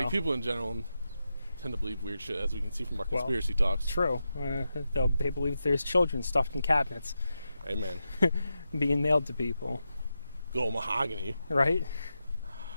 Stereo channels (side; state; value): both; inverted; correlation -0.89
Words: people in general tend to believe weird shit, as we can see from our conspiracy talks. true. They believe there's children stuffed in cabinets Amen. being mailed to people, Good old mahogany. right?